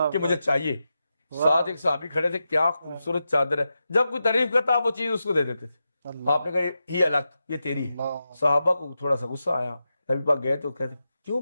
کہ مجھے چاہیے. ساتھ ایک صحابی کھڑے تھے، کیا خوبصورت چادر ہے. جب کوئی تعریف کرتا وہ چیز اس کو دے دیتے تھے. آپ نے کہا یہ الگ، یہ تیری ہے. صحابہ کو تھوڑا سا غصہ آیا. نبی پاک گئے تو کہتے کیوں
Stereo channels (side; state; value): both; inverted; correlation -0.89